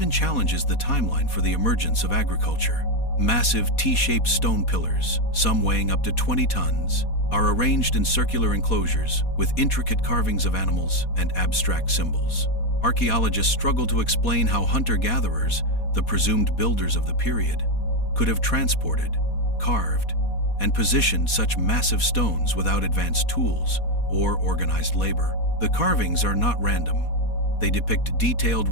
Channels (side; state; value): right; late; 4.2 ms